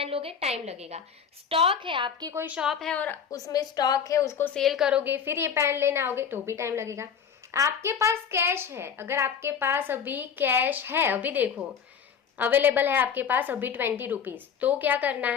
लोगे, टाइम लगेगा। स्टॉक है, आपकी कोई शॉप है और उसमें स्टॉक है, उसको सेल करोगे, फिर ये पेन लेने आओगे तो भी टाइम लगेगा। आपके पास कैश है, अगर आपके पास अभी कैश है, अभी देखो अवेलेबल है आपके पास अभी 20 रुपीज, तो क्या करना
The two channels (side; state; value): right; quieter; 7.3 dB